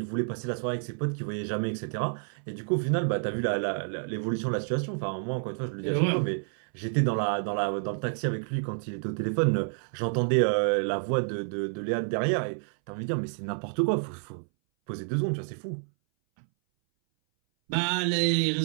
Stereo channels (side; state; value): left; silent; 59 dB below the other